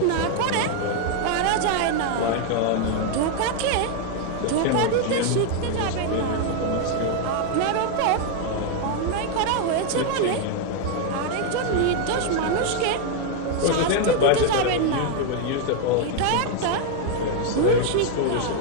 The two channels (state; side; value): different; both; correlation 0.00